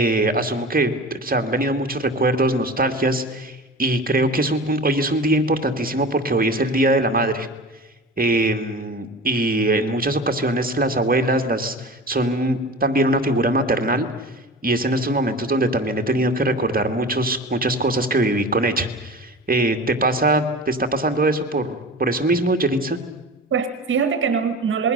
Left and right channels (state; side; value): normal; both; correlation 0.34